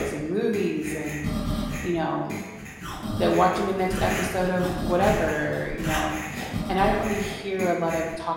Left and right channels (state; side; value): identical; both; correlation 1.00